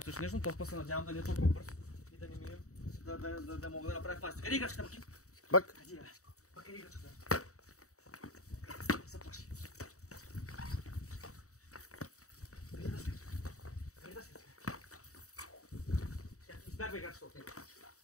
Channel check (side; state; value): right; late; 0.65 ms